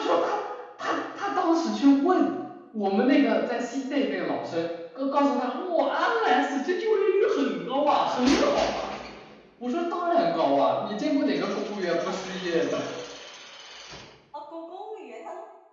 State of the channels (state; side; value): identical; both; correlation 1.00